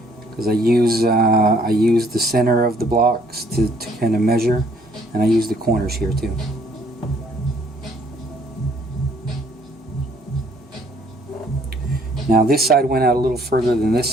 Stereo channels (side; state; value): both; normal; correlation 0.63